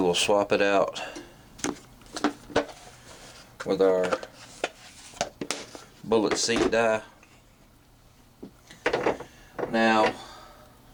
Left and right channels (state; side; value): identical; both; correlation 1.00